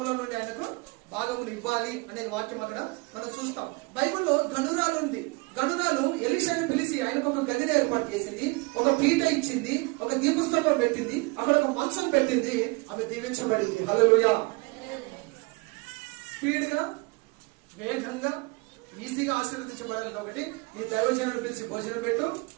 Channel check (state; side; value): quieter; left; 26.8 dB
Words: నుండి ఆయనకు భాగమును ఇవ్వాలి అనేది వాక్యం అక్కడ మనం చూస్తాం. బైబిల్లో గనురాలు ఉంది. గనురాలు ఎలీషాని పిలిచి ఆయనకు ఒక గదిని ఏర్పాటు చేసింది, ఒక పీట ఇచ్చింది, ఒక దీపస్తంభం పెట్టింది, అక్కడ ఒక మంచం పెట్టింది. ఆమె దీవించబడింది. హల్లెలూయా. స్పీడ్ గా, వేగంగా, ఈజీగా ఆశీర్వదించబడాలి. ఒకటి, నీ దైవజనుడు పిలిచి భోజనం పెట్టు,